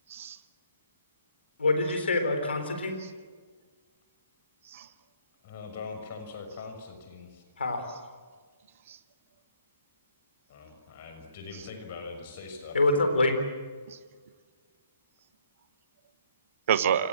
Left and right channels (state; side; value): inverted; both; correlation -0.65